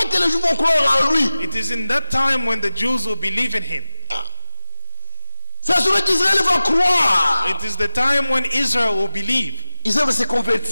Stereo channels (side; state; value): both; inverted; correlation -1.00